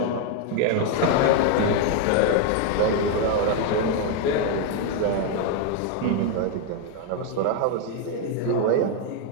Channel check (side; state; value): both; different; correlation 0.01